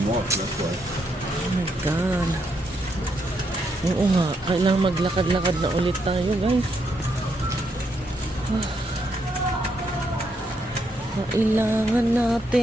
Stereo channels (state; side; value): normal; both; correlation 0.77